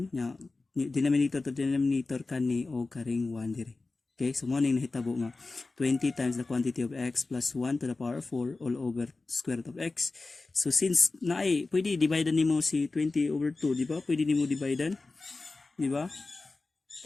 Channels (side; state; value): right; quieter; 3.5 dB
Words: nya, denominator to denominator kani og karing 1 dire. Okay, so mo ning nahitabo nga 20 times the quantity of x plus 1 to the power of 4 all over square root of x. So since naay pwede divide nimo si 20 over 2, di ba? Pwede nimo divide, di ba?